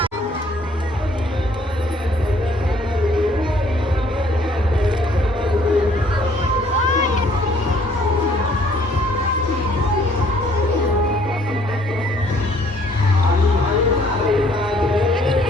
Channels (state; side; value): normal; both; correlation 0.61